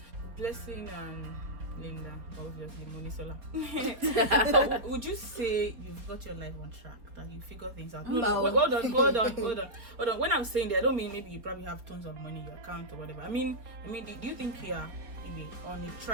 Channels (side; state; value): left; late; 4.5 ms